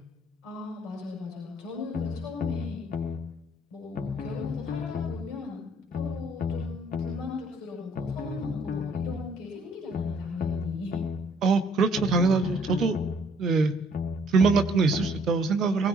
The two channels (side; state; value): both; normal; correlation 0.62